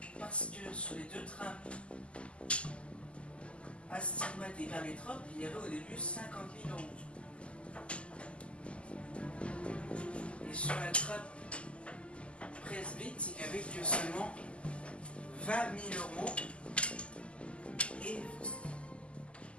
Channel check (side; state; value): right; late; 0.055 ms